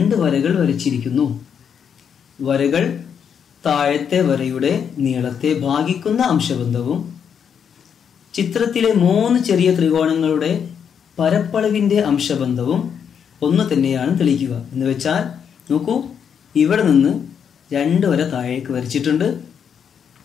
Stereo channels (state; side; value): quieter; right; 7.6 dB